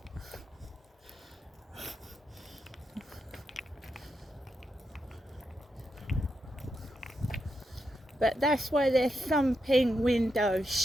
But that's why they're thumping windows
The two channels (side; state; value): both; normal; correlation 0.84